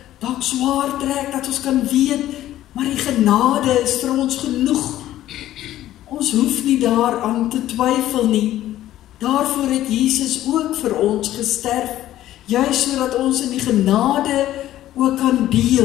dalk swaar trek, dat ons kan weet, maar die genade is vir ons genoeg. Ons hoef nie daaraan te twyfel nie. Daarvoor het Jesus ook vir ons gesterf, juis sodat ons in die genade ook kan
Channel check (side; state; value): right; quieter; 13.6 dB